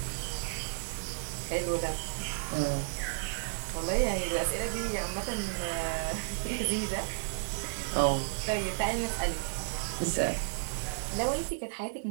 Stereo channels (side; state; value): left; silent; 56 dB below the other